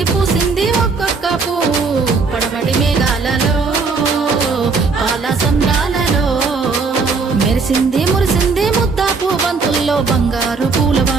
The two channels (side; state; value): left; quieter; 4.5 dB